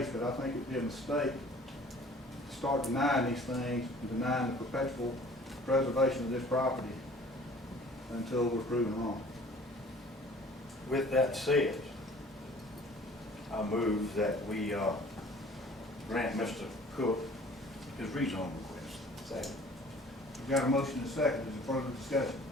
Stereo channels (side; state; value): both; normal; correlation 0.50